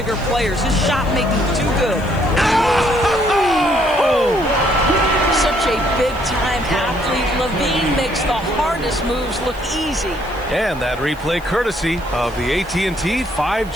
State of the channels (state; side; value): noise; right; hiss, 24 dB below the sound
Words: players. His shot making too good. Oh! Such a big-time athlete. LaVine makes the hardest moves look easy. And that replay courtesy of the AT&T